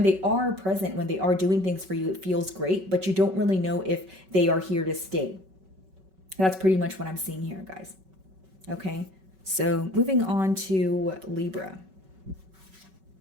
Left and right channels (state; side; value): late; left; 5.3 ms